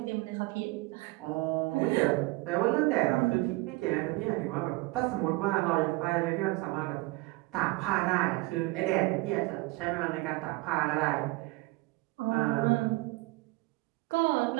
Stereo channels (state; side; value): quieter; left; 22.5 dB